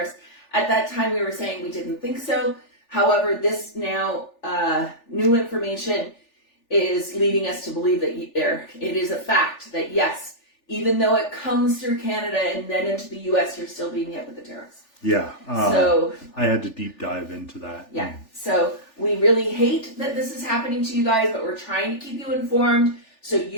At that time, we were saying we didn't think so. However, this now new information is leading us to believe that it is a fact that, yes, even though it comes through Canada and then into the U.S., you're still being hit with the tariffs. Yeah. So I had to deep dive into that. Yeah. So we really hate that this is happening to you guys, but we're trying to keep you informed so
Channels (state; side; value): late; right; 3.4 ms